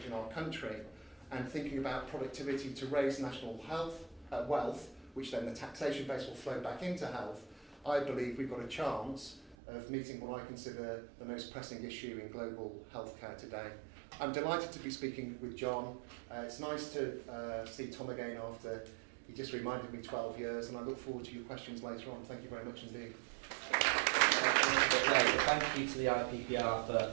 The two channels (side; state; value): left; drops out; at 9.6 s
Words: our country and thinking about productivity to raise national wealth, which then the taxation base will flow back into health, I believe we've got a chance of meeting what I consider the most pressing issue in global healthcare today. I'm delighted to be speaking with Jon. It's nice to see Tom again after he just reminded me 12 years, and I look forward to your questions later on. Thank you very much indeed. Thank you to the IPPR